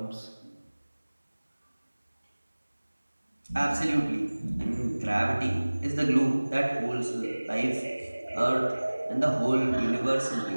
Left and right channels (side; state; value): both; inverted; correlation -1.00